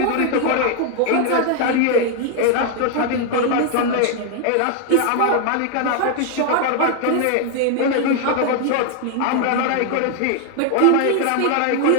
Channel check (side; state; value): both; different; correlation 0.00